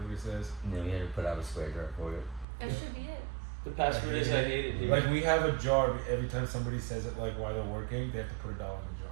says. No, you had to put out a square dart for it. That should be it. The password is I hate it here. Like we have a jar. Every time somebody says it, like while they're working, they have to put $1 in the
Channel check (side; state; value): left; drops out; at 2.5 s